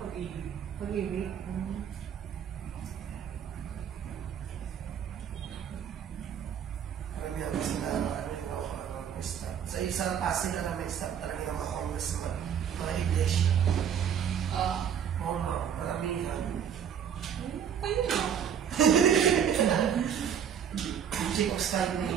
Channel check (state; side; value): quieter; left; 8.4 dB